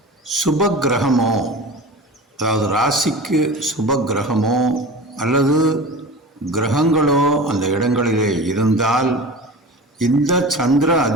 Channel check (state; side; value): normal; both; correlation 0.33